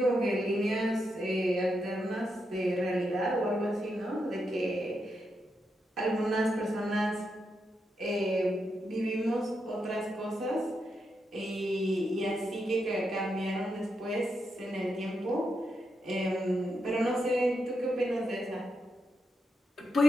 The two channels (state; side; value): normal; both; correlation 0.84